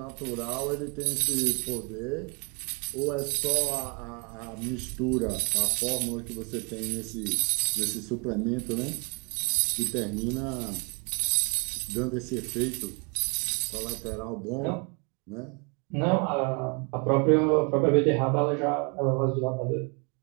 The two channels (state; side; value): quieter; left; 33.2 dB